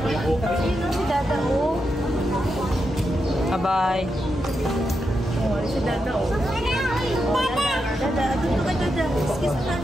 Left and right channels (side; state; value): both; normal; correlation 0.85